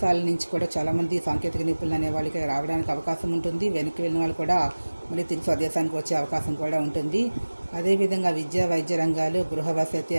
నుంచి కూడా చాలామంది సాంకేతిక నిపుణులు అనే వాళ్ళకి రావడానికి అవకాశం ఉంటుంది. వెనక్కి వెళ్ళిన వాళ్ళు కూడా మళ్ళీ తిరిగి స్వదేశానికి వచ్చే అవకాశం కూడా ఉంటుంది. అదేవిధంగా విద్య, వైద్య రంగాలు, గృహ వసతి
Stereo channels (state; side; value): inverted; both; correlation -1.00